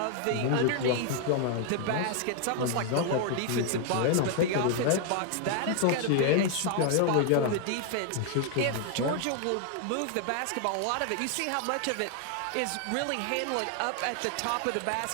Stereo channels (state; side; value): different; both; correlation 0.00